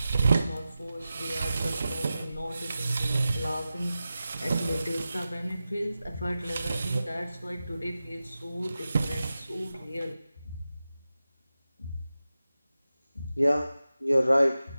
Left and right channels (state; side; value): inverted; both; correlation -0.94